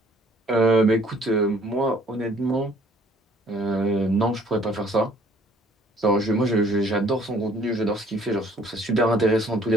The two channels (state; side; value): normal; both; correlation 0.59